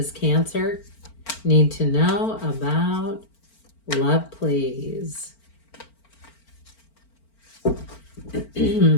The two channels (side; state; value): right; late; 4.4 ms